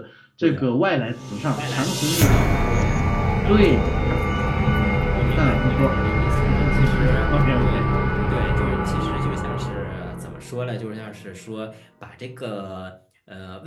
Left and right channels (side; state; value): both; identical; correlation 1.00